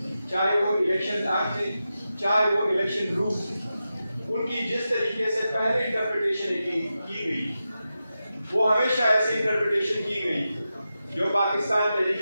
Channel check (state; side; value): inverted; both; correlation -0.91